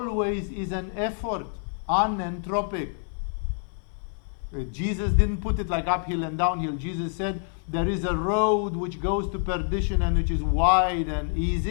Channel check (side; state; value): right; silent; 55 dB below the other